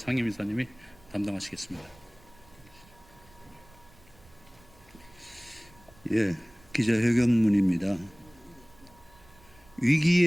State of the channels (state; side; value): noise; right; rumble, 26 dB below the sound